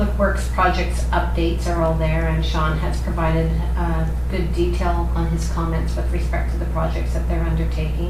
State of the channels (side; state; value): both; identical; correlation 1.00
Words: Works projects updates are all there, and Sean has provided good detail on his comments with respect to the projects that they're